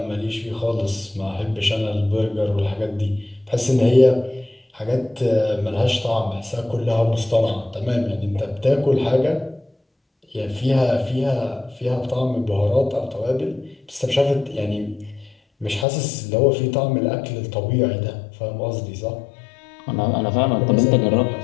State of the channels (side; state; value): right; drops out; at 15.9 s